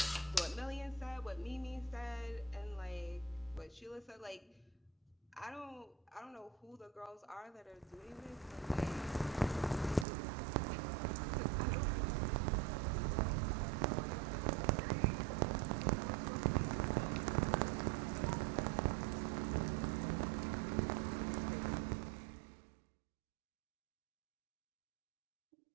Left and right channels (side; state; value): left; drops out; at 10.1 s